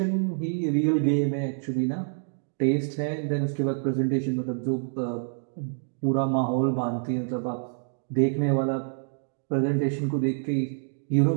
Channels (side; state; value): left; silent; digital silence